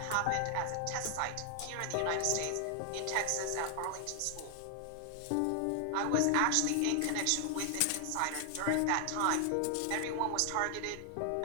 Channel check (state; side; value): different; both; correlation 0.00